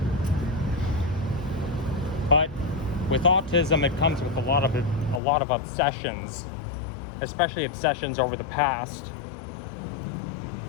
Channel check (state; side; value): drops out; right; at 5.2 s